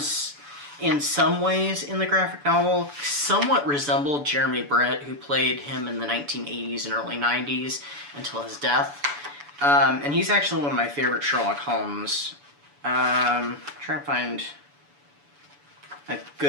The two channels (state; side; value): late; left; 7.0 ms